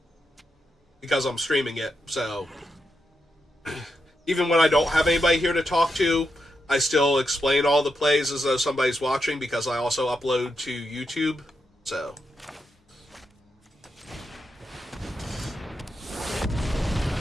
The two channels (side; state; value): both; normal; correlation 0.84